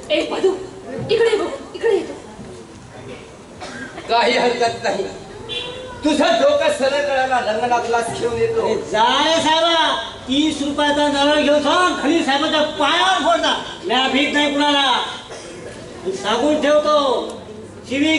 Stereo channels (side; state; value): both; identical; correlation 1.00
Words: ए मधू, इकडे बघ, इकडे येतो. काही हरकत नाही. तुझं डोकं सरळ करायला रंगनाथला घेऊन येतो. जाय साहेबा, 30 रुपयाचा नळ घेऊन सांग खाली साहेबाच्या पायावर फोडता. म्या भीत नाही कुणाला. सांगून ठेवतो,